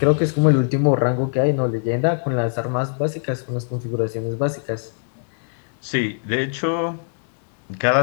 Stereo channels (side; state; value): right; silent; digital silence